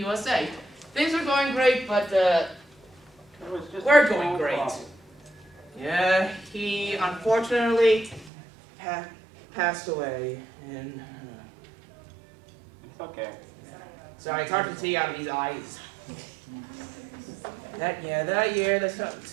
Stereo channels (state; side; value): drops out; left; at 8.3 s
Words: Things were going great, but we're going great. Yeah, he unfortunately passed away in It's okay. Sorry, it's hard to see out of these eyes. That year the